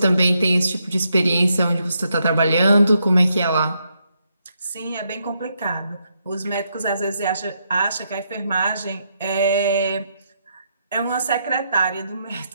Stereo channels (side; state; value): both; inverted; correlation -0.79